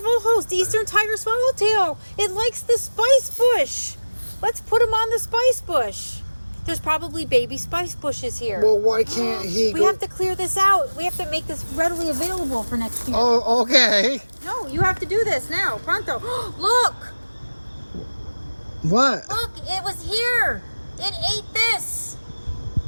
host, Eastern tiger swallowtail. It likes the spice bush. Let's put him on the spice bush. There's probably baby spice bushes here. Well, why can't he We have to clear this out. We have to make this readily available for next year. Oh, okay. No, you have to do this now. Pronto. Look! What? Look, it was here. It ate this.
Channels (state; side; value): inverted; both; correlation -1.00